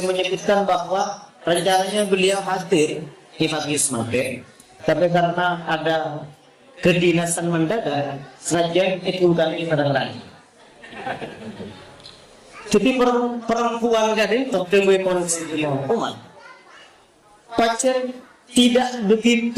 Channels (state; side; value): identical; both; correlation 1.00